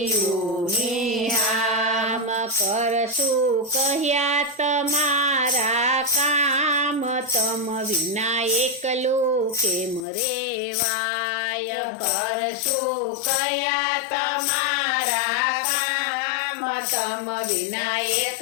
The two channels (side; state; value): right; drops out; at 10.1 s